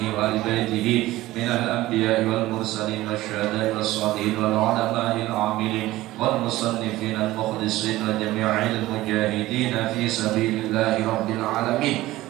وآل بيته من الأنبياء والمرسلين والشهداء والصالحين والعلماء العاملين والمصنفين المخلصين وجميع المجاهدين في سبيل الله رب العالمين.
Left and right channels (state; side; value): quieter; left; 17.0 dB